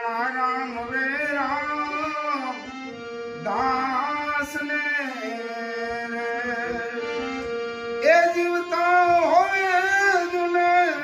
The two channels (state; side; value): identical; both; correlation 1.00